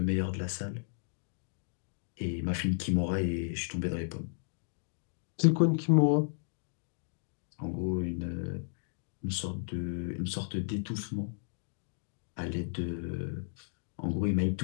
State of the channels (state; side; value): silent; right; digital silence